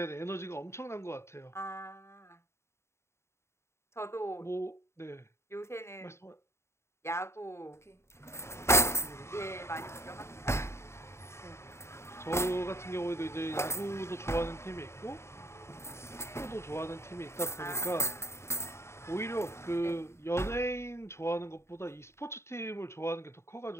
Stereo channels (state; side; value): late; right; 0.13 ms